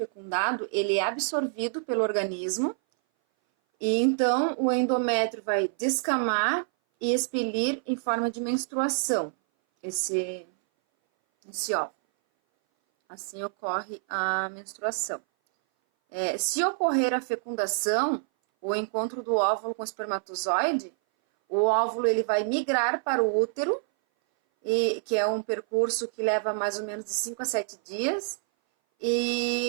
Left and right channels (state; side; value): silent; left; 58 dB below the other